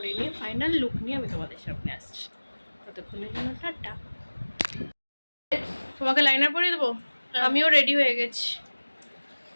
নিয়ে ফাইনাল লুক নিয়ে আমি তোমাদের সামনে আসছি। ততক্ষণের জন্য টাটা। তোমাকে লাইনার পরিয়ে দেবো? আমিও রেডি হয়ে গেছি,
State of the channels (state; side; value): inverted; both; correlation -1.00